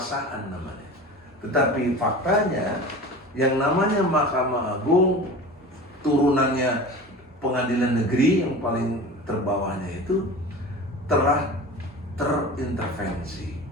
namanya. Tetapi faktanya yang namanya Mahkamah Agung turunannya pengadilan negeri yang paling terbawahnya itu telah terintervensi.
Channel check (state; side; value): normal; both; correlation 0.35